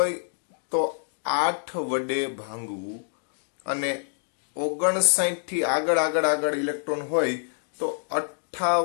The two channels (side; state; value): right; silent; digital silence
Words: તો 8 વડે ભાંગવું અને 59 થી આગળ ઇલેક્ટ્રોન હોય તો